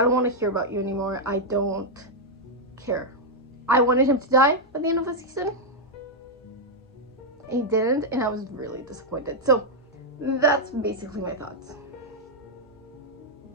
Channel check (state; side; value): normal; both; correlation -0.02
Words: want to hear about you anymore. I don't care. I wanted him to die at the end of the season. And he didn't, and I was really disappointed. So, that's basically my thoughts.